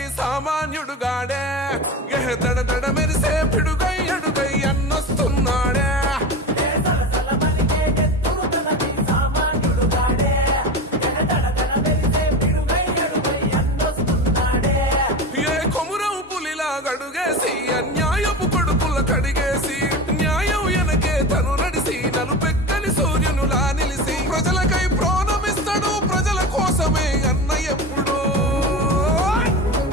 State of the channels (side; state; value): both; normal; correlation 0.27